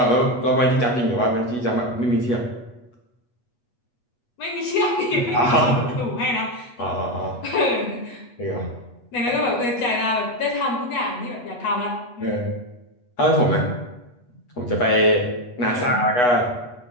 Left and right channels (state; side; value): late; right; 8.2 ms